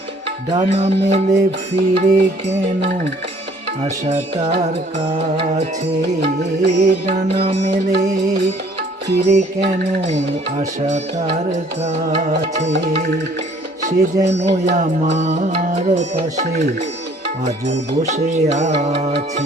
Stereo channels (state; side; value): normal; both; correlation 0.57